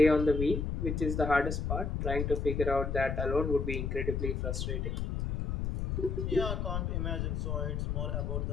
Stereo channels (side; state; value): left; noise; rumble, 1 dB below the sound